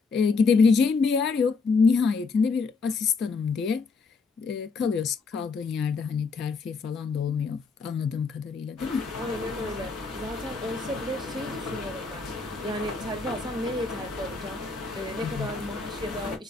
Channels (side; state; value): right; quieter; 4.5 dB